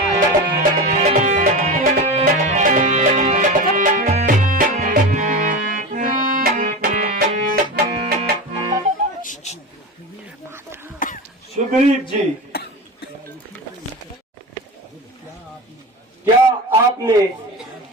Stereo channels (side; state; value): both; normal; correlation 0.25